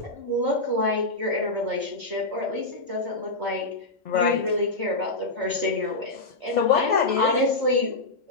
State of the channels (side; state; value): right; quieter; 3.1 dB